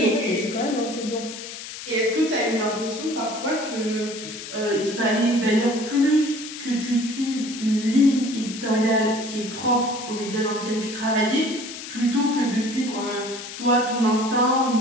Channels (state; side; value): noise; left; hiss, 11 dB below the sound